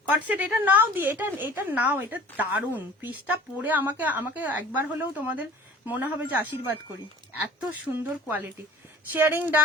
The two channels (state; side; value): normal; both; correlation 0.45